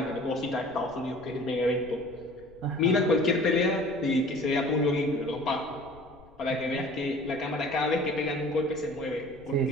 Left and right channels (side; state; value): left; noise; rumble, 25 dB below the sound